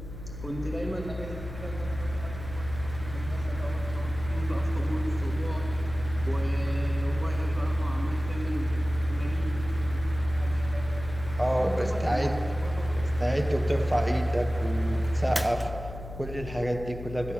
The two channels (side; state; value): left; noise; hum, 11 dB below the sound